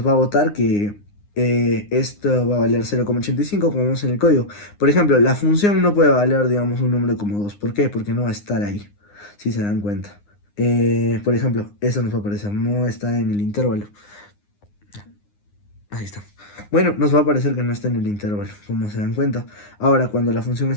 va a botar que esto va a valer 0,85 como vemos en el código. Por ejemplo, la función no puede valer, digamos, un número como 2. ¿Por qué? Porque no va a estar ahí, si se dan cuenta. Por ejemplo, eso nos va a aparecer, no está en el intervalo. Ahí está. Bueno, nos va a parecer que no está en el intervalo, como se dan cuenta. Ahora, cuando la función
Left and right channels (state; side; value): late; right; 9.7 ms